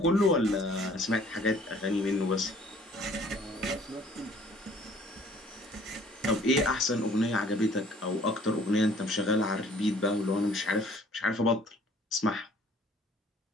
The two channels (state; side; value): normal; both; correlation 0.56